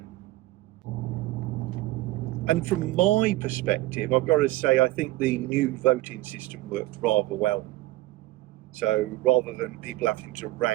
And from my perspective, I've got to say, I think the new voting system worked rather well. So rather than people having to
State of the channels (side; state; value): left; quieter; 17.6 dB